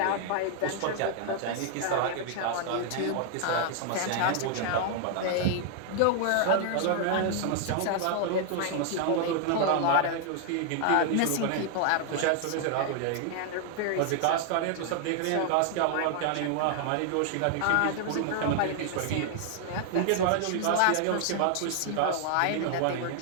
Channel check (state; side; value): different; both; correlation 0.00